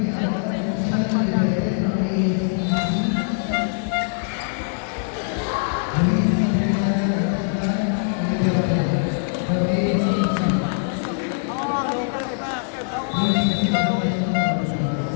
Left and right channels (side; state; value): right; silent; digital silence